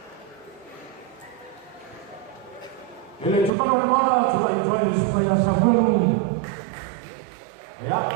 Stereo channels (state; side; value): drops out; left; at 3.5 s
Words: El chupano de mala, chupa y chupa y chupa y Samuel. Ya